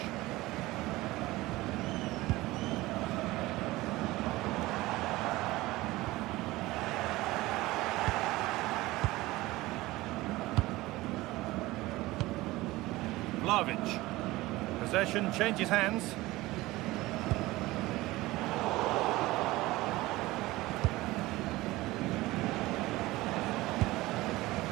Vlahovic. Possession changes hands.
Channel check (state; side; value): quieter; left; 19.1 dB